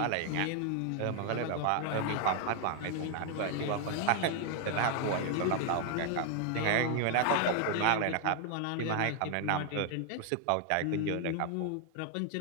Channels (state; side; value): different; both; correlation 0.00